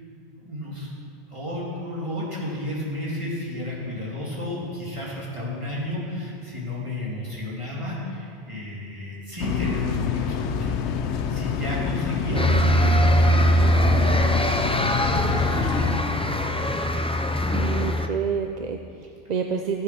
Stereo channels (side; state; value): both; normal; correlation 0.50